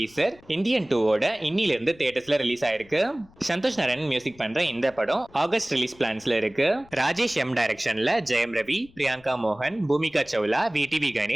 இந்தியன் 2வோட இன்னில இருந்து தியேட்டர்ஸ்ல ரிலீஸ் ஆயிருக்கு. சந்தோஷ் நாராயணன் மியூசிக் பண்ற இந்த படம் ஆகஸ்ட் ரிலீஸ் பிளான்ஸ்ல இருக்கு. ராஜேஷ் எம் டைரக்ஷன்ல ஜெயம் ரவி, பிரியங்கா மோகன், பூமிகா சௌலா, விடிவி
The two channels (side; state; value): left; noise; rumble, 26 dB below the sound